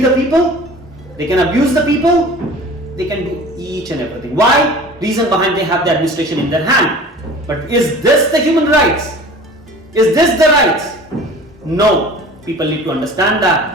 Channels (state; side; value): normal; both; correlation 0.42